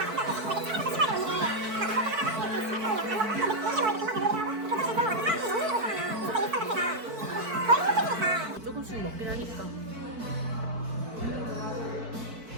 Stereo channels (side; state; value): left; late; 4.5 ms